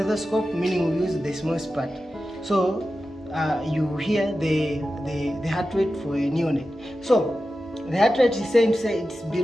meaning we'll use the smallest part. So you hear the heart rate for a neonate. So the heart rate is saying it's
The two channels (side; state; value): both; normal; correlation 0.92